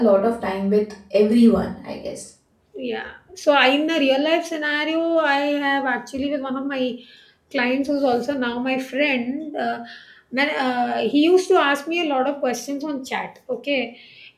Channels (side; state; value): both; identical; correlation 1.00